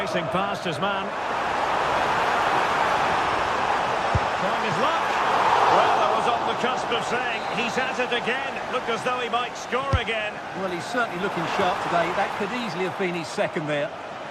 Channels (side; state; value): both; identical; correlation 1.00